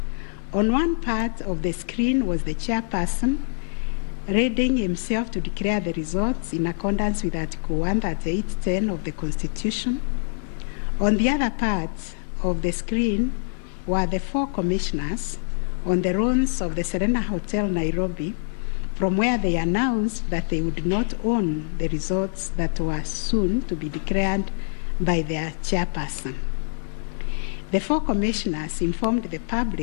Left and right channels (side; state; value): right; silent; digital silence